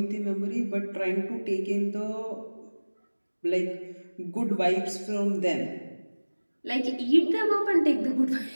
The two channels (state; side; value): inverted; both; correlation -1.00